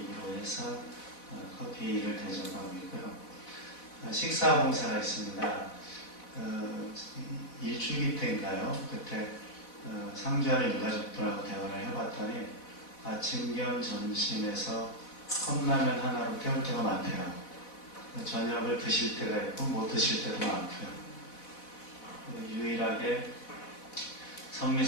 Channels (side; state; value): right; late; 4.1 ms